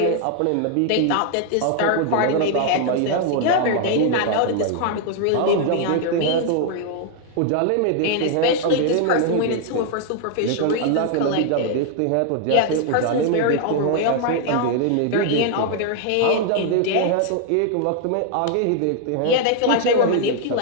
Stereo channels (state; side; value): different; both; correlation 0.00